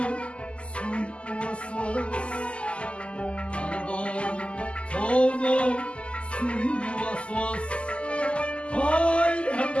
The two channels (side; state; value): right; late; 0.055 ms